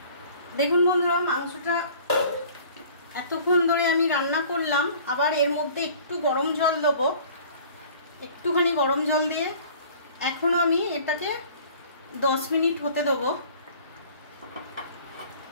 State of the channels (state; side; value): inverted; both; correlation -0.49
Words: দেখুন বন্ধুরা, মাংসটা এতক্ষণ ধরে আমি রান্না করলাম। আবার এর মধ্যে একটু গরম জল দেবো, একটুখানি গরম জল দিয়ে এখনো আমি এটাকে 10 মিনিট হতে দেবো।